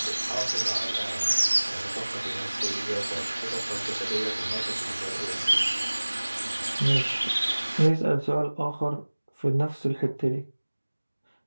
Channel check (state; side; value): inverted; both; correlation -1.00